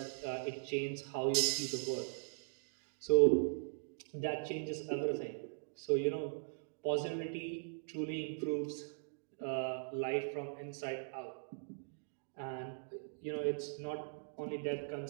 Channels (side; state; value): left; silent; digital silence